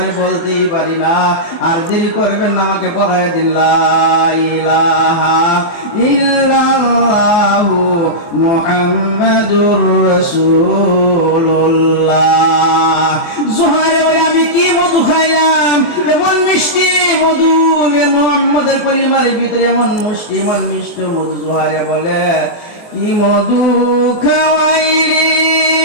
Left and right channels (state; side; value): late; right; 23 ms